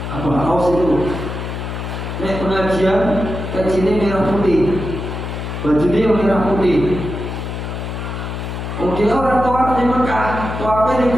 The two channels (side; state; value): left; noise; hum, 6 dB below the sound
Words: itu. Nek pengajian kajiannya merah putih, bajunya merah putih. Dia orang tawaf di Mekah, tawafnya di